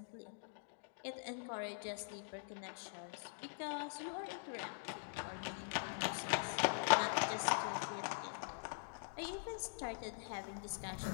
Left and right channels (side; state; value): right; silent; digital silence